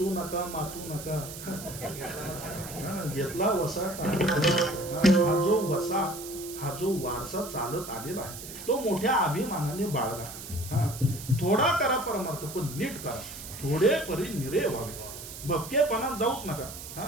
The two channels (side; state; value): right; noise; hiss, 11 dB below the sound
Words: नका मातू नका. घेतला वसा. हा जो वसा, हा जो वारसा चालत आलेला आहे तो मोठ्या अभिमानाने बाळगा. थोडा करा परमार्थ, पण नीट करा. थोडे परी निरे व्हावे, भपकेपणात जाऊच नका.